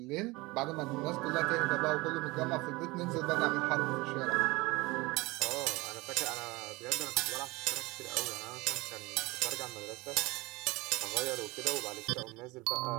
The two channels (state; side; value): quieter; left; 22.7 dB